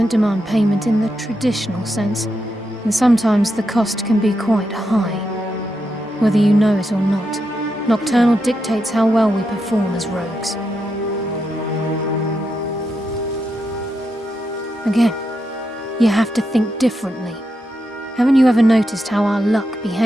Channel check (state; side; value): normal; both; correlation 0.85